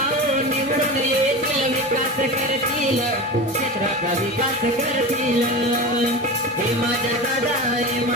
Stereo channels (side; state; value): both; normal; correlation 0.27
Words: निवडून येतील, विकास करतील, क्षेत्राचा विकास करतील. हे माझ्या दादा, हे